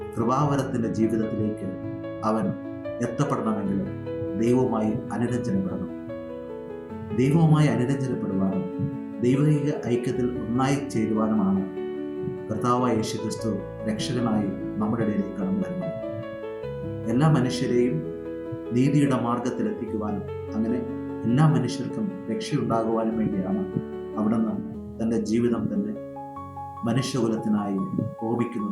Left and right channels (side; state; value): both; identical; correlation 1.00